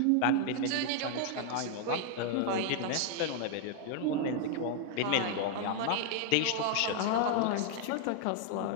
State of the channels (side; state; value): both; different; correlation 0.00